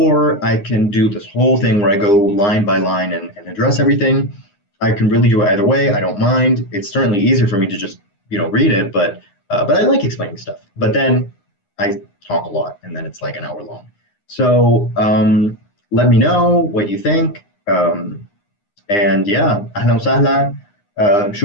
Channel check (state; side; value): late; right; 9.8 ms